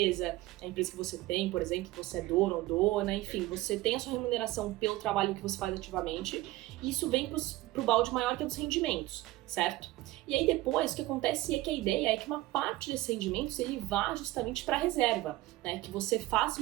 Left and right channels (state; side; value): quieter; left; 17.8 dB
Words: a empresa que você tem, por exemplo, que você é dono ou dona, enfim, você tem a sua remuneração pelo trabalho que você faz ativamente, e isso vem pro balde maior que é dos rendimentos, certo? E aí depois o que acontece é que a ideia é que uma parte desses rendimentos ele vá justamente para a reserva, né? Que você faça